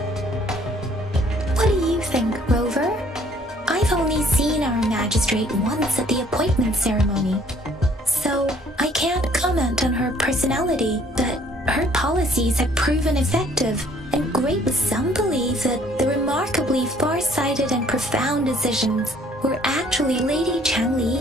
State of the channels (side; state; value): both; normal; correlation 0.60